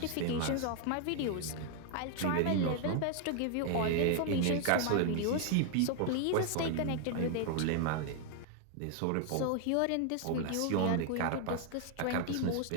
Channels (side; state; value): both; different; correlation 0.00